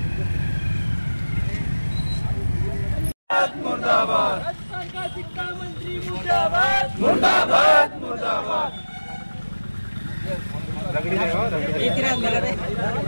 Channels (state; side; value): inverted; both; correlation -1.00